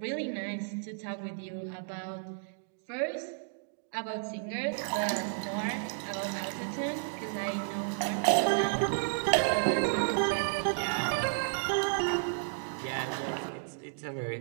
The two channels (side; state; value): left; silent; digital silence